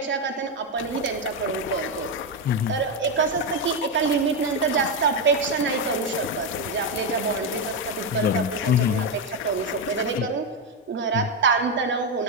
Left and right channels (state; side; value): normal; both; correlation 0.06